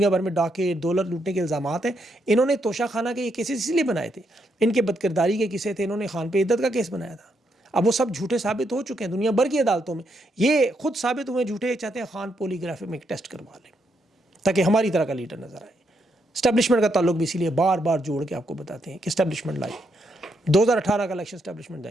بھر میں ڈاکے دولت لوٹنے کے الزامات ہیں، انہوں نے توشہ خانہ کے یہ کیسز اس لیے بنائے تھے، ان کے بدکرداری کے قصے تھے، انہوں نے خان پہ عدت کا کیس بنایا تھا۔ اب وہ سب جھوٹے ثابت ہو چکے ہیں دنیا بھر کی عدالتوں میں، یہ خود ثابت ہوئے جھوٹے، چاہتے ہیں خان پولی گرافی میں ایک ٹیسٹ کروا لیں تاکہ ہماری طرح کا لیڈر نظر آئے۔ اسٹیبلشمنٹ کا تعلق بھی اسی لیے بار بار جوڑ کے آپ کو بتاتے ہیں کہ اسٹیبلشمنٹ لائی، 2018 کا الیکشن اسٹیبلشمنٹ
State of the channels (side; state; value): both; normal; correlation 0.78